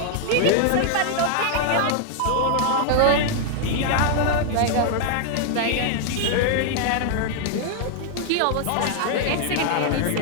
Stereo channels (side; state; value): both; different; correlation 0.00